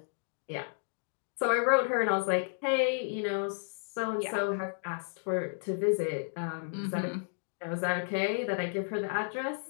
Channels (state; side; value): silent; right; digital silence